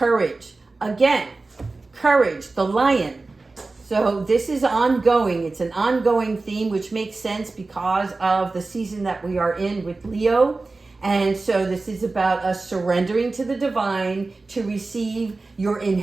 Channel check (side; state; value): left; quieter; 3.5 dB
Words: Again, courage, the lion. So this is ongoing. It's an ongoing theme, which makes sense because of the season that we are in with Leo. And so this is about us surrendering to the divine to receive your